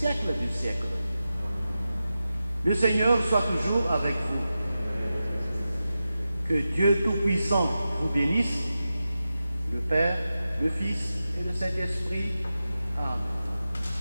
des siècles. Le Seigneur soit toujours avec vous. Que Dieu Tout-Puissant vous bénisse, le Père, le Fils et le Saint-Esprit. Amen.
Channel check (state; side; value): inverted; both; correlation -0.92